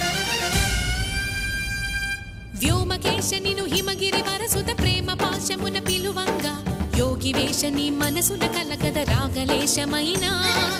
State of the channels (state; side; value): identical; both; correlation 1.00